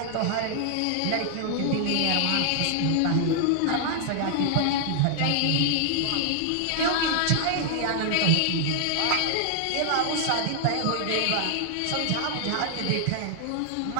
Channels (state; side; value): different; both; correlation 0.00